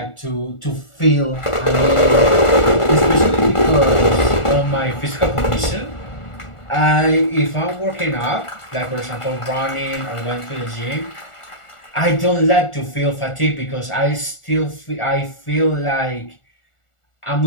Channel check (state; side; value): late; right; 1.4 ms